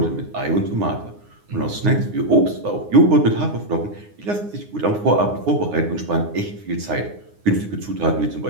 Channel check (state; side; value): late; left; 9.7 ms